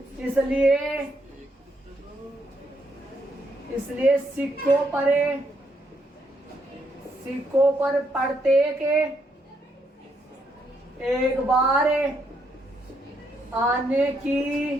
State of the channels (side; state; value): both; normal; correlation 0.76